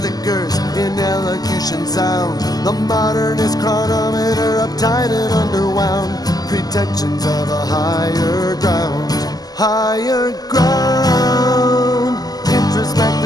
in elocution sound. The modernist chronometer uptight and underwound. Pretensions of a higher ground. Higher ground.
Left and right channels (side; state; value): right; late; 0.18 ms